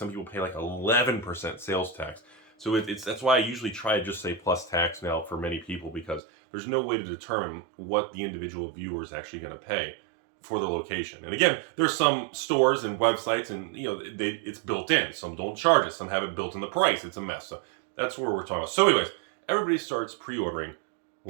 people pay like 11% sales tax. So that's why I usually try to just say plus tax now for many people, because there's no way to determine what the individual viewer is actually going to pay for the location. And again, there's some stores and websites and it's built in. Some don't charge it. Some have it built in the price. It's a mess. So that's where we're talking about. So anyways, everybody starts pre-ordering,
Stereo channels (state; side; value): drops out; left; at 6.2 s